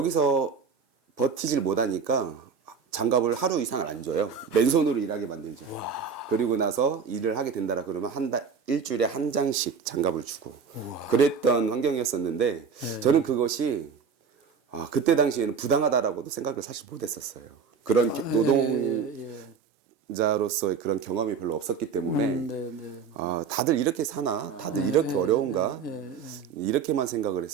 버티질 못하니까 장갑을 하루 이상을 안 줘요. 맨손으로 일하게 만들죠. 그리고 나서 일을 하게 된다라 그러면 일주일에 한 장씩 장갑을 주고 그랬던 환경이었었는데 저는 그것이 그때 당시에는 부당하다라고도 생각을 사실 못했었어요. 그런 노동자로서의 그런 경험이 별로 없었기 때문에 다들 이렇게 사나? 다들 이렇게 어려운가? 이렇게만 생각을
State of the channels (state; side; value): quieter; left; 6.0 dB